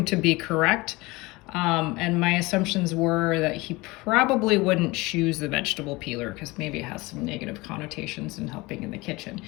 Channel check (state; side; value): quieter; right; 22.6 dB